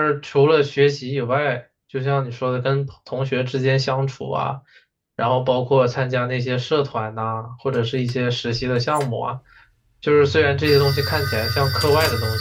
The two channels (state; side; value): identical; both; correlation 1.00